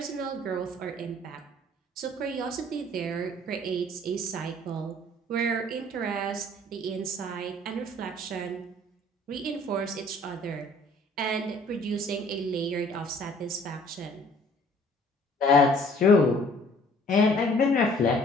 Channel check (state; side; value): normal; both; correlation 0.55